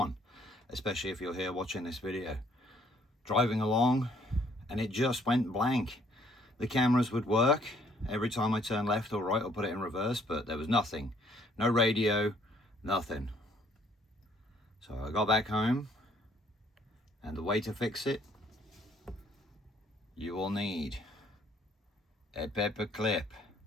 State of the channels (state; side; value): normal; both; correlation 0.64